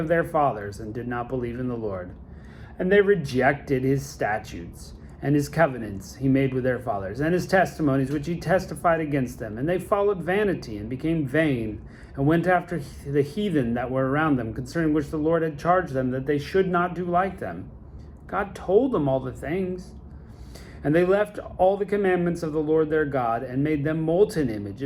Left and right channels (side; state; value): both; identical; correlation 1.00